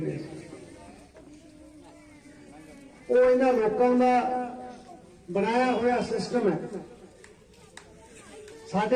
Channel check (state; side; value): identical; both; correlation 1.00